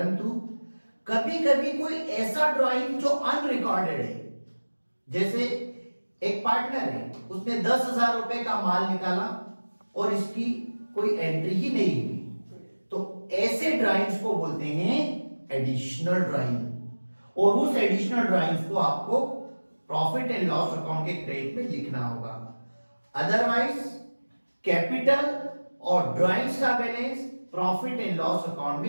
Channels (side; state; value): both; inverted; correlation -1.00